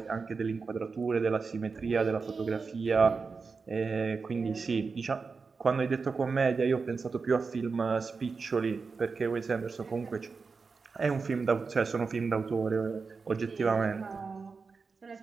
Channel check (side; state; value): left; quieter; 4.8 dB